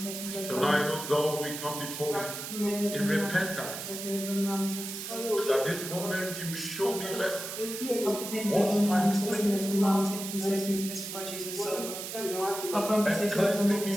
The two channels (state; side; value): noise; right; hiss, 7 dB below the sound